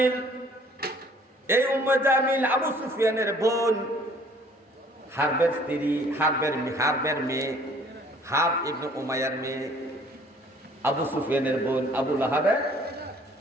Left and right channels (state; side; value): normal; both; correlation 0.56